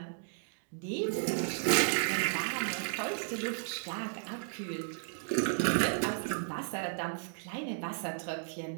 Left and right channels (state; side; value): silent; left; digital silence